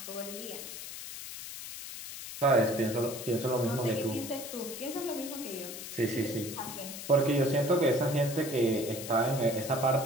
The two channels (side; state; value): left; noise; hiss, 10 dB below the sound